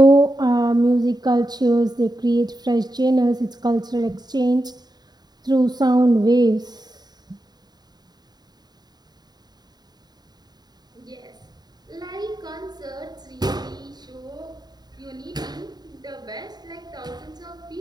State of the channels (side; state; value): left; late; 0.20 ms